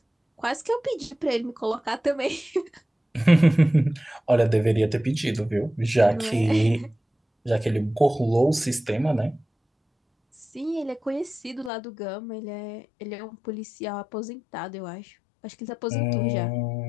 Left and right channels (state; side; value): drops out; right; at 11.7 s